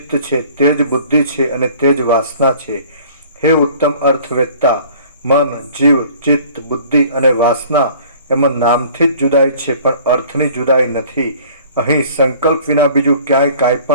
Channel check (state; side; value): inverted; both; correlation -0.50